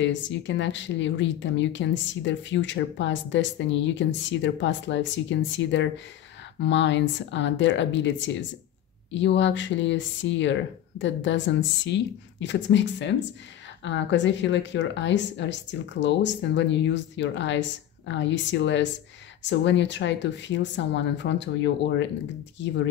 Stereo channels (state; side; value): quieter; right; 11.5 dB